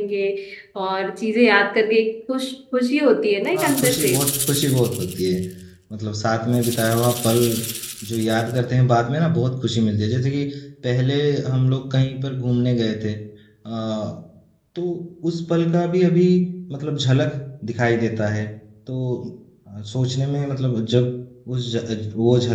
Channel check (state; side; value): identical; both; correlation 1.00